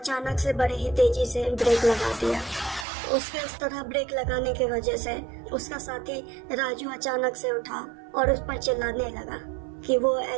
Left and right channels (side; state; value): left; drops out; at 2.9 s